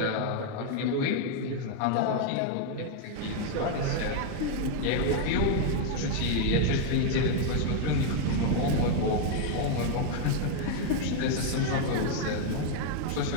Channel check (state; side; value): different; both; correlation 0.01